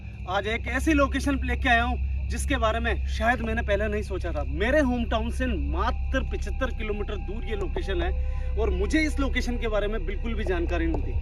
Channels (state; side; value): identical; both; correlation 1.00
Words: आज एक ऐसी लोकेशन लेके आया हूं जिसके बारे में शायद मैंने पहले नहीं सोचा था। मेरे होम टाउन से मात्र 75 किलोमीटर दूर ये लोकेशन है और मुझे इस लोकेशन के बारे में बिल्कुल भी जानकारी नहीं